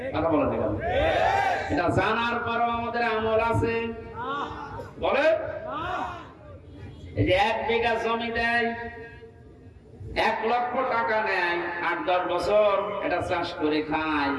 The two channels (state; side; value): identical; both; correlation 1.00